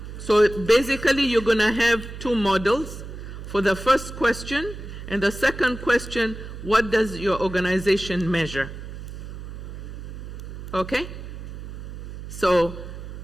So basically you're going to have 2 models for the first question, and the second question, what does your organization measure? Okay? So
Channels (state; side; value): noise; right; hum, 10 dB below the sound